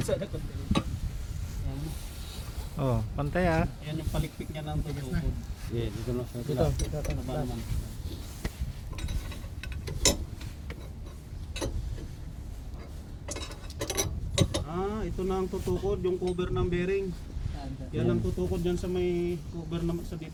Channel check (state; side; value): identical; both; correlation 1.00